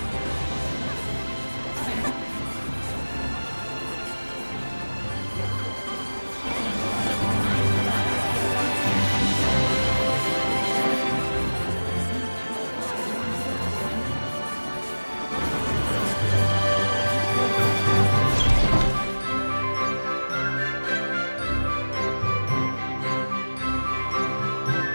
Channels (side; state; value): both; inverted; correlation -1.00